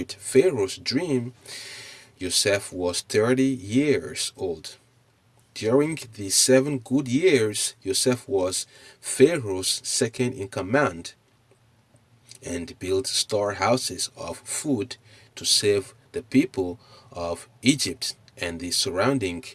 Pharaoh's dream, Joseph was 30 years old. During the 7 good years, Joseph was Pharaoh's second in command and built storehouses of food to save the people of Egypt and the surrounding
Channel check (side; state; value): both; identical; correlation 1.00